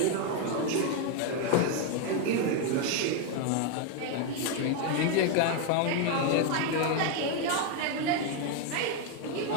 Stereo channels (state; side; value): different; both; correlation 0.01